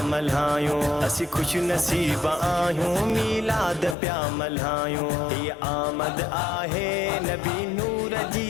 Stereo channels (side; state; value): right; drops out; at 4.0 s